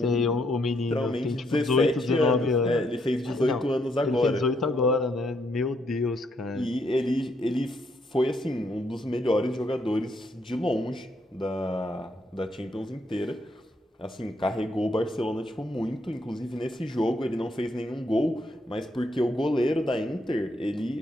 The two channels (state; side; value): normal; both; correlation 0.74